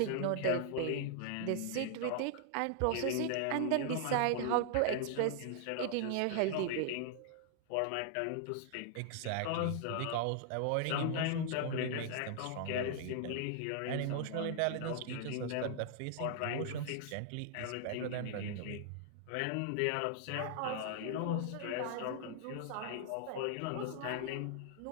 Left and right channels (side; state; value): both; different; correlation 0.00